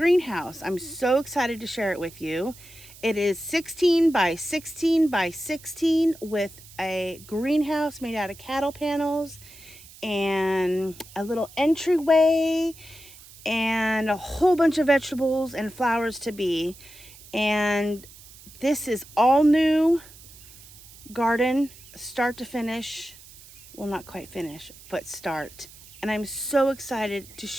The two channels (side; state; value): right; noise; hiss, 20 dB below the sound